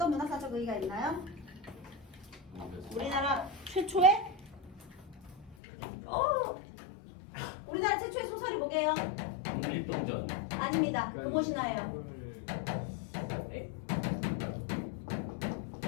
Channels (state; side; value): drops out; right; at 5.6 s